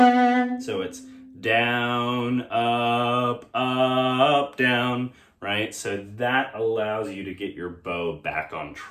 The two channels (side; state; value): both; identical; correlation 1.00